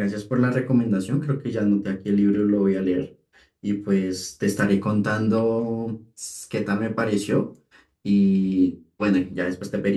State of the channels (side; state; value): both; identical; correlation 1.00